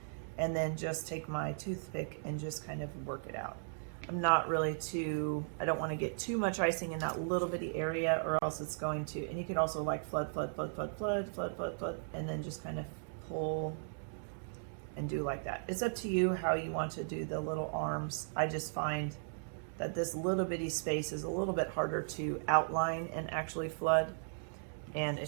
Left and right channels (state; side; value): silent; left; digital silence